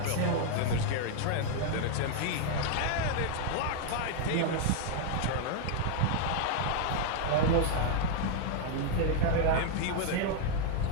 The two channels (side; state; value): both; different; correlation 0.00